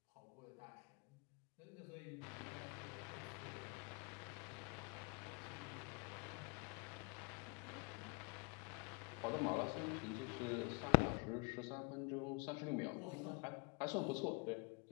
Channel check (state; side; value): quieter; right; 33.0 dB